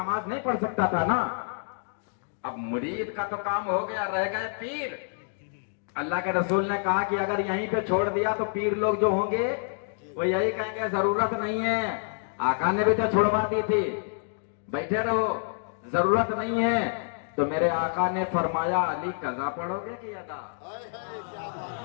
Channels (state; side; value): silent; right; digital silence